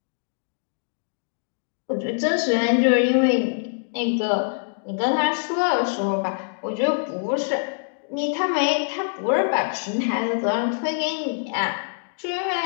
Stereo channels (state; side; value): silent; right; digital silence